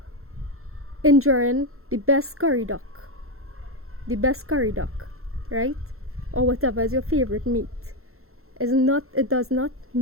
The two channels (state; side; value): late; left; 0.62 ms